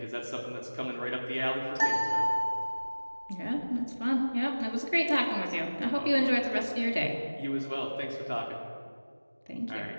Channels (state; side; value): inverted; both; correlation -1.00